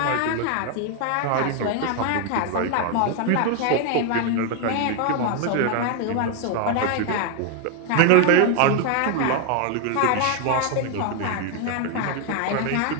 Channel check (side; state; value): both; different; correlation 0.01